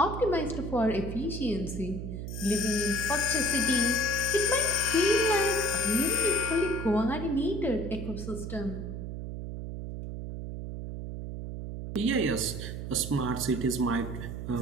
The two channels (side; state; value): right; noise; hum, 6 dB below the sound